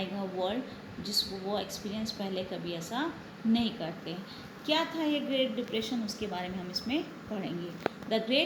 वर्ल्ड, जिसको वो एक्सपीरियंस पहले कभी ऐसा नहीं करते। क्या था ये ग्रेट डिप्रेशन, उसके बारे में हम इसमें पढ़ेंगे। द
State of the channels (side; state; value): both; identical; correlation 1.00